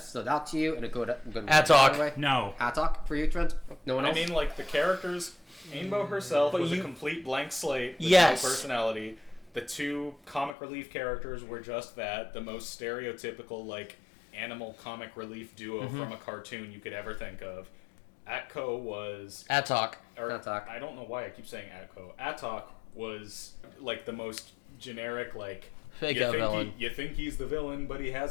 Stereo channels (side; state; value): right; drops out; at 10.6 s